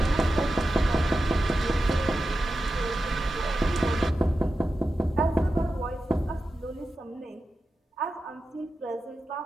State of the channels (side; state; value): both; normal; correlation 0.92